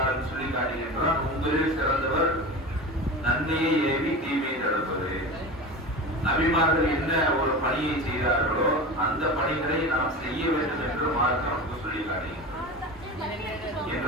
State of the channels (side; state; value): both; normal; correlation 0.30